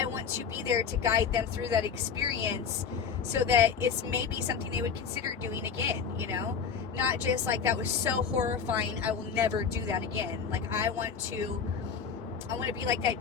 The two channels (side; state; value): right; quieter; 6.4 dB